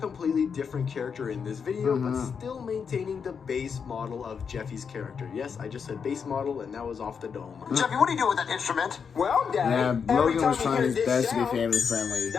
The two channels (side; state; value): right; quieter; 6.4 dB